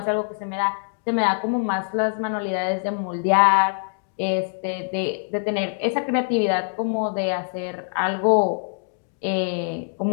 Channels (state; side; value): silent; right; digital silence